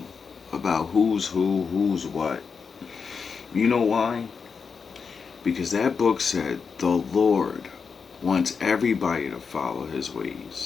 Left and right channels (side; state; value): right; quieter; 5.6 dB